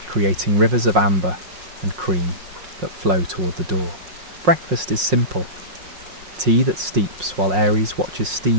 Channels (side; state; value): left; late; 5.5 ms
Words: creating rivers of amber and cream that flow toward the door. Breakfast is simple. Tea that steeps while Aries watches